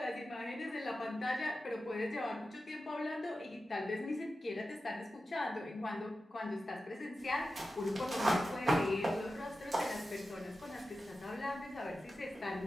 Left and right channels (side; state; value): both; normal; correlation 0.92